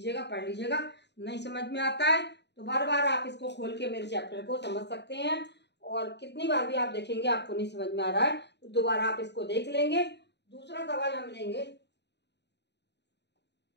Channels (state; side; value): late; right; 0.50 ms